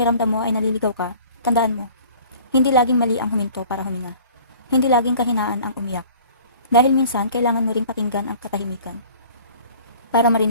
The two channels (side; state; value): both; inverted; correlation -0.48